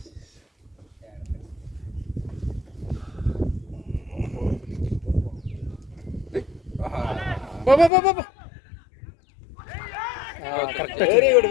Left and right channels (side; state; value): right; drops out; at 7.9 s